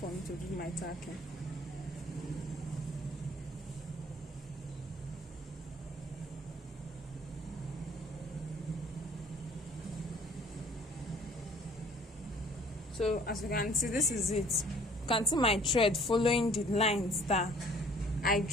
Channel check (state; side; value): normal; both; correlation 0.55